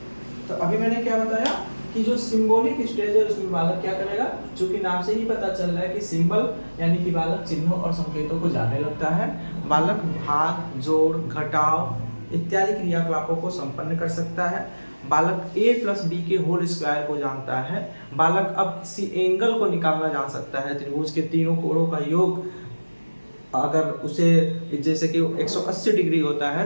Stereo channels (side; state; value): both; inverted; correlation -1.00